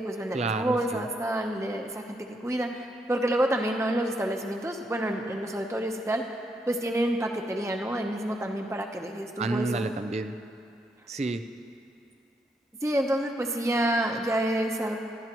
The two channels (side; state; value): both; normal; correlation 0.77